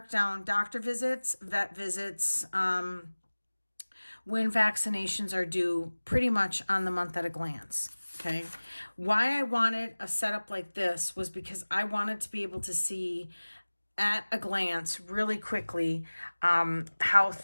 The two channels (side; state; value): both; inverted; correlation -1.00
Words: down doctor visits, vet visits, when vaccinations are due, pretty much on the month at a glance. Okay. Why I wanted a setup like this was because I wanted to be able to see at a glance really quickly how